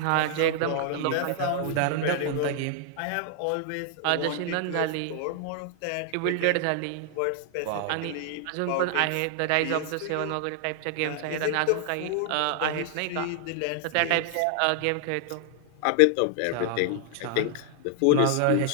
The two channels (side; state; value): both; different; correlation 0.00